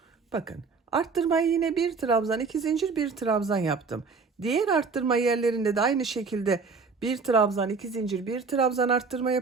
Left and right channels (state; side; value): quieter; left; 4.8 dB